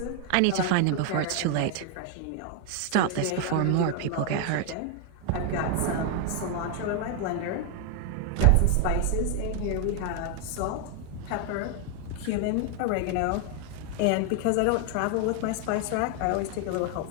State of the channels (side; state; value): both; different; correlation 0.00